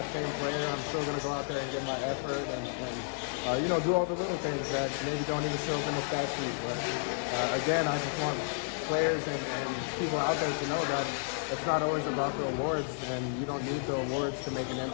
same player. I'm still going to go out there and get my effort and you know, do all the little things that maybe don't even show up in the stat sheet. But again, I just want players and people out there to know that it's not always about the awards, and you don't need the awards to make an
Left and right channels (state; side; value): silent; right; digital silence